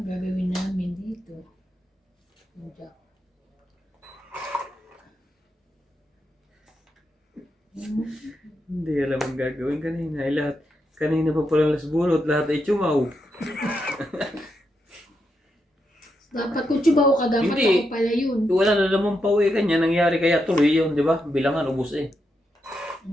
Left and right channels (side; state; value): both; normal; correlation 0.83